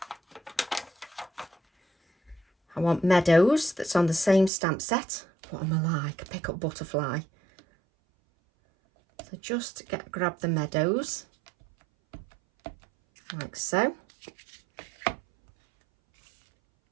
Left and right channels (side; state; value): left; drops out; at 4.5 s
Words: I want Meadows that's on the same stamp set. What am I like? Pick up butterfly. So just grab the Meadows. Like so.